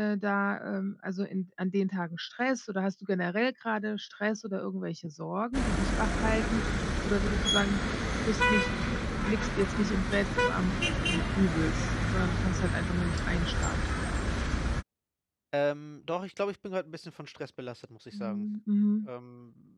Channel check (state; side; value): identical; both; correlation 1.00